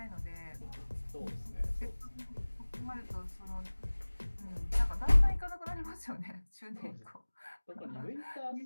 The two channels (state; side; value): inverted; both; correlation -1.00